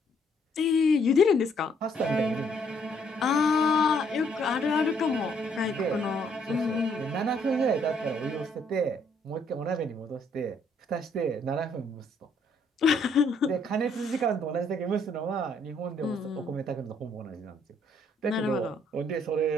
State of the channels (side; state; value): both; normal; correlation 0.68